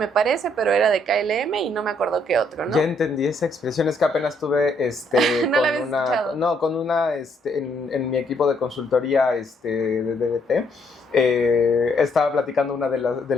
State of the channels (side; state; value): both; normal; correlation 0.70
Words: parece, pero era de KLM y no me acuerdo qué otro, ¿no? Ya entendí esa expresión, es que apenas tuve ¿No la habías escuchado? No, con una en mi equipo de consultoría de DBT. Estaba platicando una de